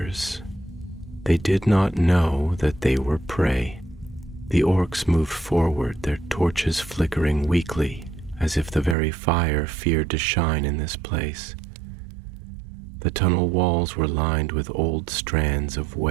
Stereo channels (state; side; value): drops out; left; at 9.0 s